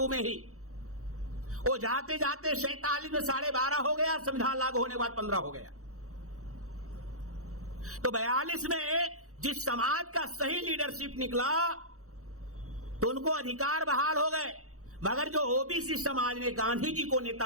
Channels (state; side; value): late; left; 0.65 ms